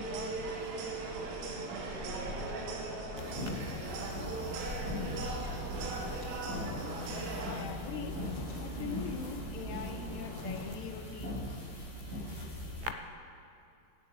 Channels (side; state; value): left; late; 15 ms